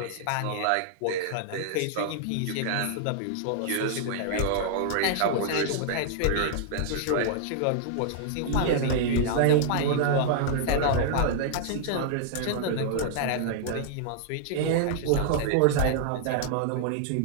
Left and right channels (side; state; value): both; different; correlation -0.01